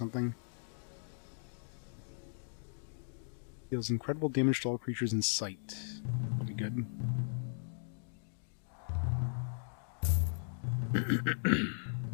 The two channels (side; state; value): right; silent; digital silence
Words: Deals incredible damage to all creatures in sight. That'll be good.